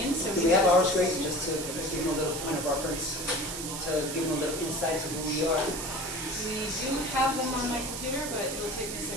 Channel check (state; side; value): noise; right; hiss, 6 dB below the sound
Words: So Do we have our screens just to give them a little point of reference, to give them a little insight to who we are? We do have them on my computer, but it'll take me a